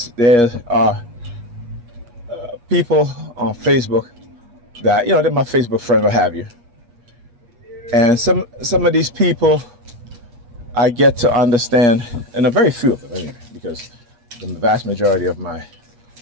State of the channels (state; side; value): late; left; 8.4 ms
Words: are people on Facebook that, they're my Facebook friend, what have you. And some of these people I get to understand, and a very few of them anyway, because the vast majority of my